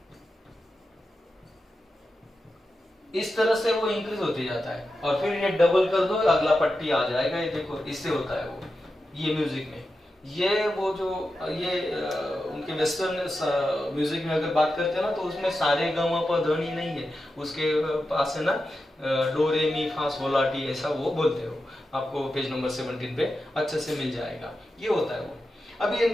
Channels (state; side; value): normal; both; correlation 0.90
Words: इस तरह से वो इंक्रीज होते जाता है, और फिर ये डबल कर दो, अगला पट्टी आ जाएगा, ये देखो इससे होता है वो, ये म्यूजिक में। ये वो जो ये उनके वेस्टर्न म्यूजिक में अगर बात करते हैं ना, तो उसमें सारे ग म प ध नी नहीं है, उसके पास है ना डो रे मी फा sol ला टी, ऐसा वो बोलते हो, आपको पेज नंबर 17 पे अच्छे से मिल जाएगा, ये होता है वो। अब ये